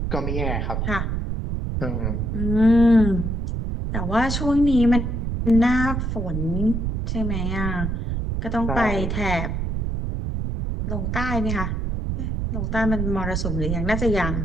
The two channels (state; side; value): noise; right; rumble, 1 dB below the sound